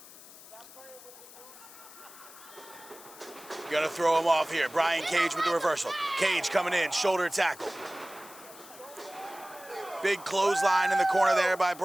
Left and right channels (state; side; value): noise; left; hiss, 18 dB below the sound